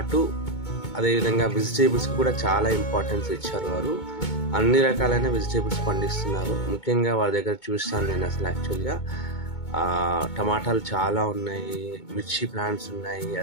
అదేవిధంగా వెజిటేబుల్స్ కూడా చాలా ఇంపార్టెన్స్ ఇచ్చారు. వారు అన్ని రకాలైన వెజిటేబుల్స్ పండిస్తున్నారు. ముఖ్యంగా వారి దగ్గర చూస్తాను నేను అసలు యాక్చువల్గా టమాటాలు చాలా ఉన్నాయి, మిర్చి ప్లాంట్స్ ఉన్నాయి,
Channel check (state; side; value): late; right; 2.2 ms